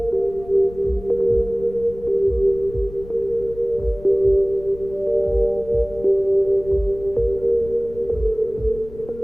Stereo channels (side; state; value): left; noise; rumble, 17 dB below the sound